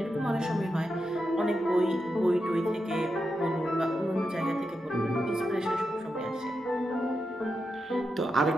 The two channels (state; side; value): normal; both; correlation 0.87